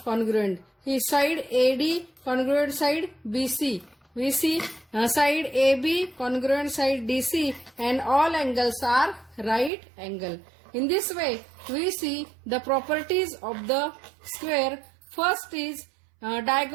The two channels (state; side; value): drops out; left; at 9.7 s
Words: congruent. His side AD congruent side BC. We see side AB congruent side DC and all angles are right angle. In this way, we see the properties of the square. First is